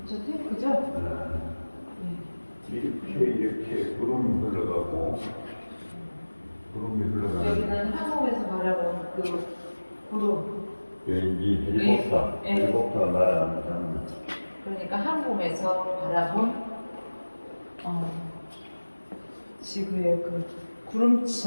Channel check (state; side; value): inverted; both; correlation -1.00